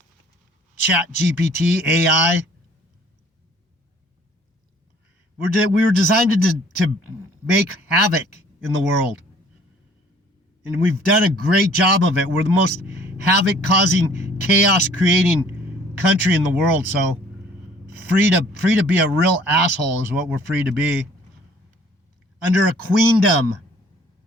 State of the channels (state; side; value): normal; both; correlation 0.55